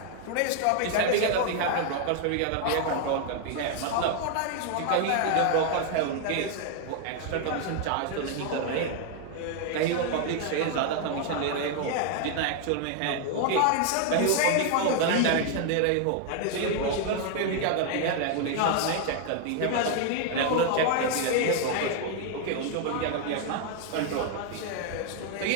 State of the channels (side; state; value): both; different; correlation 0.00